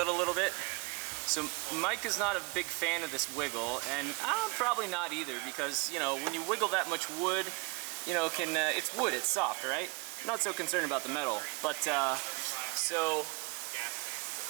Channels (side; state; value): left; quieter; 28.7 dB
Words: a little bit? So, Mike is not a big fan of this wiggle, and I'm probably not either, because, you know, when you wiggle that much wood, you know, it's wood, it's soft, right? I'm not so concerned about the metal. But, so,